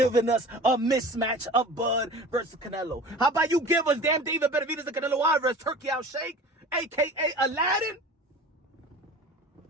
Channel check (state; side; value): normal; both; correlation 0.39